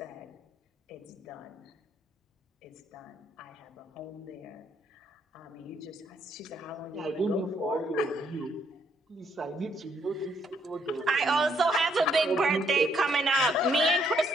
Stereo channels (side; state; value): both; normal; correlation 0.71